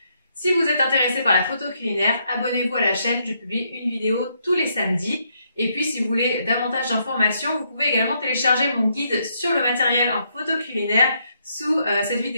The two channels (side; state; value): both; inverted; correlation -0.75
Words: Si vous êtes intéressé par la photo culinaire, abonnez-vous à la chaîne, je publie une vidéo tous les samedis. Et puis si vous voulez davantage d'informations, vous pouvez également télécharger mon guide sur le matériel en photo culinaire sous cette